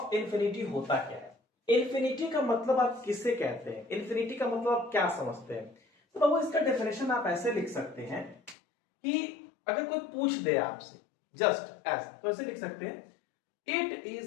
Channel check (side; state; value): right; drops out; at 8.6 s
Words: इंफिनिटी होता क्या है। इंफिनिटी का मतलब आप किससे कहते हैं? इंफिनिटी का मतलब आप क्या समझते हैं? तो बाबू इसका डेफिनेशन आप ऐसे लिख सकते हैं कि अगर कोई पूछ दे आपसे जस्ट एज, तो ऐसे लिख सकते हैं it